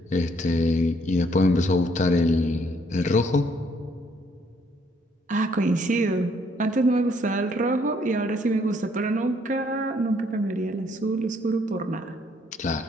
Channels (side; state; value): both; normal; correlation 0.67